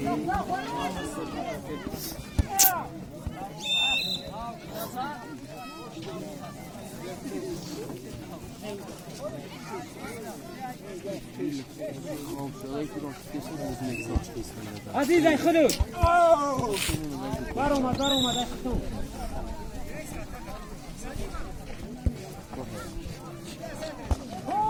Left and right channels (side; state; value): both; identical; correlation 1.00